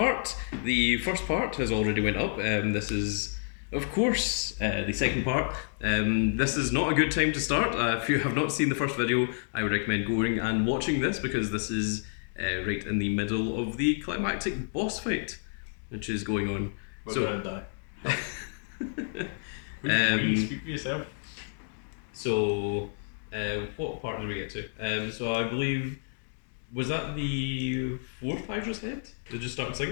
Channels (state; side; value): silent; right; digital silence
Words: The first part has already went up. This is, of course, the second part. This is not a good time to start. If you have not seen the first video, I would recommend going and watching this because this is right in the middle of the climactic boss fight, which is going on. We're gonna die. Speak for yourself. So, what part did we get to? So I believe. Was that the fourth Hydra's head? Did it just start